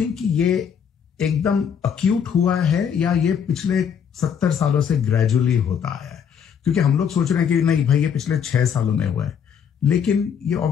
कि ये एकदम अक्यूट हुआ है या ये पिछले 70 सालों से ग्रेजुअली होता आया है? क्योंकि हम लोग सोच रहे हैं कि नहीं भाई ये पिछले 6 सालों में हुआ है, लेकिन ये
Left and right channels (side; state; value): right; quieter; 7.6 dB